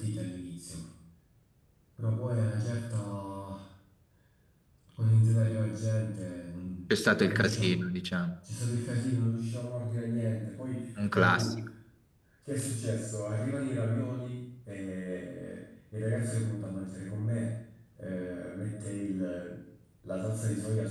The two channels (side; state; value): both; identical; correlation 1.00